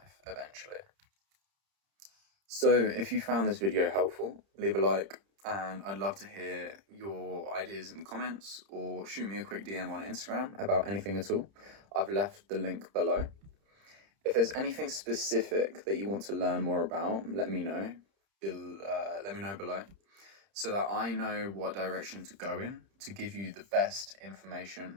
eventually. So, if you found this video helpful, leave a like, and I'd love to hear your ideas in the comments, or shoot me a quick DM on Instagram about anything at all. I've left the link below. If there's anything specific that you want to learn more about, let me know. Let me know below so that I know what direction to go in to give you the best information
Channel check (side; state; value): left; late; 30 ms